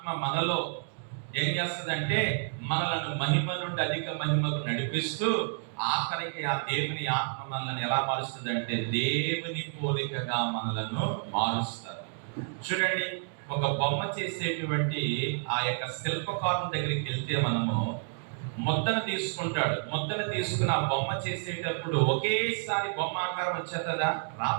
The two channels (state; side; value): silent; left; digital silence